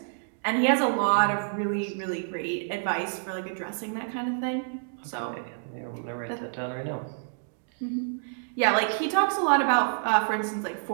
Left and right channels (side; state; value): left; silent; digital silence